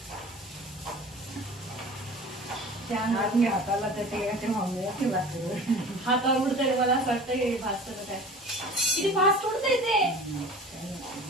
हाताला हातावर उडतंय. मला असं वाटतंय भाजतं काय किती फास्ट उडतंय ते.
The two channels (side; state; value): both; normal; correlation 0.40